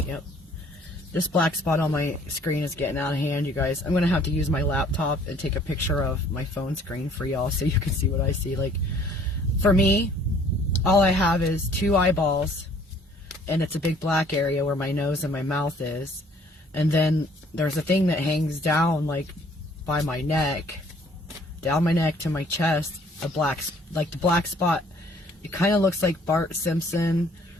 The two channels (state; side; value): normal; both; correlation 0.58